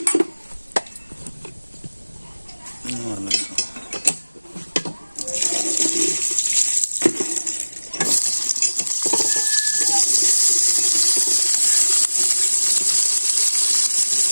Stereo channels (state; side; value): inverted; both; correlation -1.00